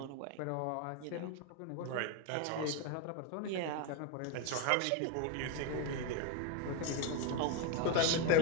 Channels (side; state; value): both; different; correlation 0.02